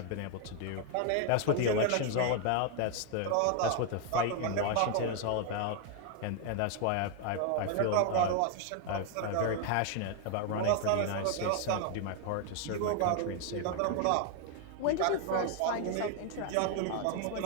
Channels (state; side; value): different; both; correlation 0.00